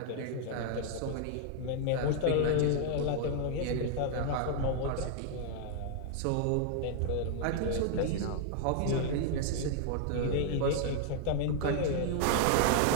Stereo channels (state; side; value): different; both; correlation 0.00